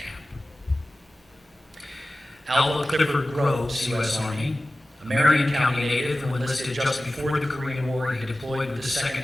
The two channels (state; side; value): normal; both; correlation 0.96